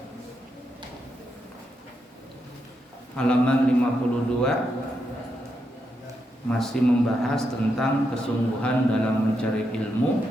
Halaman 52 masih membahas tentang kesungguhan dalam mencari ilmu,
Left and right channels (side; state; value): both; normal; correlation 0.83